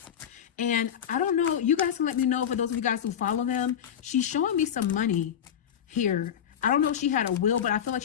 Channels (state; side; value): quieter; right; 9.1 dB